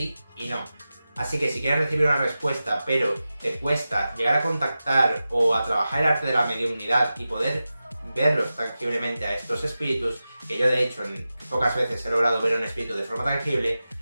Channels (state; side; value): inverted; both; correlation -0.93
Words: y no. Así que si quieres recibir una respuesta pero te cuesta llegar a contactar o a trabajar el arte de la mediumnidad y poder verlos tangiblemente a estos espíritus, que yo de hecho en pocas veces he logrado ver un espíritu de forma tangible,